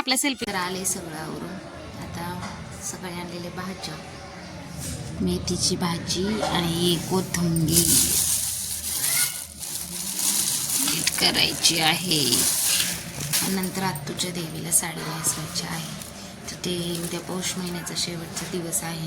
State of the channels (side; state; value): both; identical; correlation 1.00